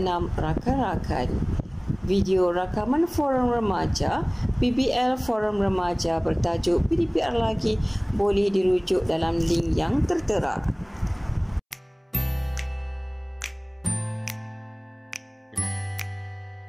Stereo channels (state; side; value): identical; both; correlation 1.00